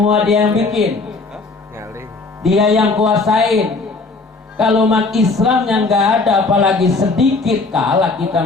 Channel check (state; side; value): quieter; right; 3.7 dB